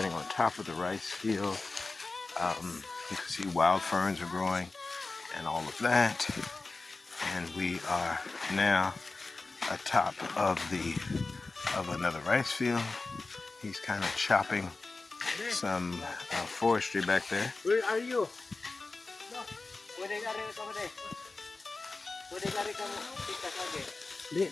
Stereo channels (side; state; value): right; quieter; 3.6 dB